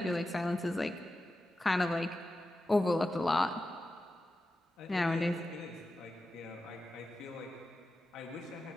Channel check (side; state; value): both; normal; correlation 0.92